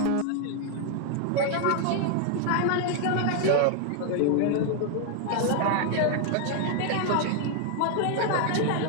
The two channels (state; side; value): different; both; correlation 0.00